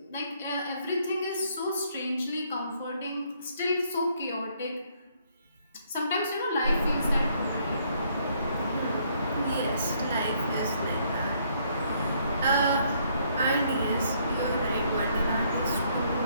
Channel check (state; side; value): inverted; both; correlation -0.68